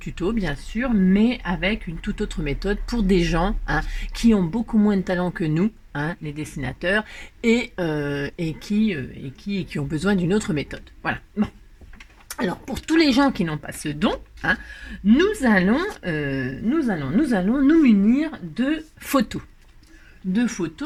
bien sûr, mais avec une toute autre méthode pour des gens, hein, qui ont beaucoup moins de talent que nous, hein, les dessinateurs, et qui ont besoin d'une autre méthode. Voilà. Bon. Alors, pour tous les gens qui n'ont pas ce don, hein, nous allons nous munir de photos. De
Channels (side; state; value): both; identical; correlation 1.00